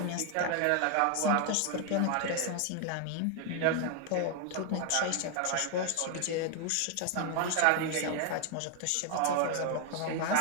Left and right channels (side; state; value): both; different; correlation 0.01